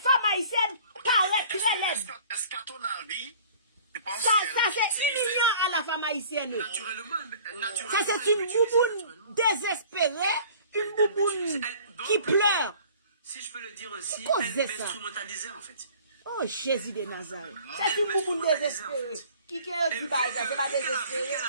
haïtiennes paraître très laides. Est-ce qu'à ton avis, tu penses Ça, c'est humiliant à la femme haïtienne. Naturellement. Ça, c'est une bouboune désespérée, une bouboune qui pleure. Si je peux le dire aussi, Pourquoi elle c'est ça? m'instrumentalisait en fait. Oh, Jésus de Nazareth. C'est une bouboune désespérée. Qui est du bail, ça, c'est pas désespéré.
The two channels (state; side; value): inverted; both; correlation -0.49